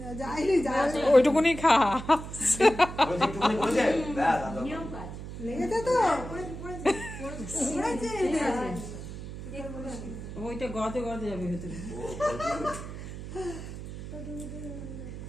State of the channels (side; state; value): right; noise; hum, 10 dB below the sound